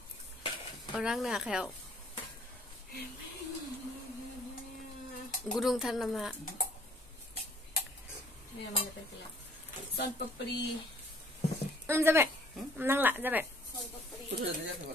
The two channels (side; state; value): both; normal; correlation 0.58